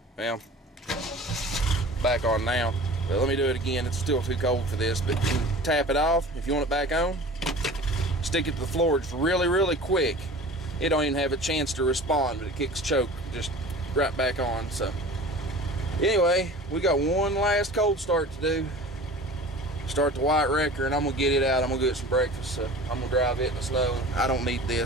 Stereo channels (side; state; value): both; normal; correlation 0.40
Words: Well, back on now. But let me do it again. It's still too cold for this, but you can tap it off. If you want it back on, stick it to the floor just really, really quick. It don't even have a chance to respond, but it kicks choke just right back on. So anyway, we got one last cold start to do. Start the white wrecker, and I'm gonna get it out. I'm gonna get some breakfast. So I'm gonna drive it in the snow. I don't need